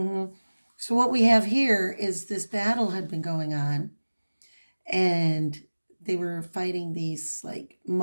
So what we have here is this battle had been going on, and they were fighting these like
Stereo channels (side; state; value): both; inverted; correlation -1.00